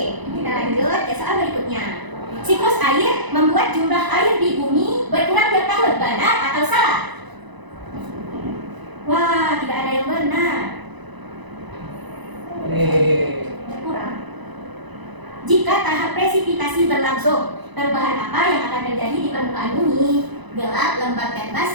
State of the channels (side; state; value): left; late; 1.0 ms